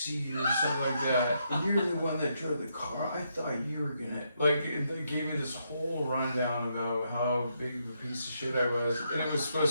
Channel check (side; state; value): both; inverted; correlation -0.78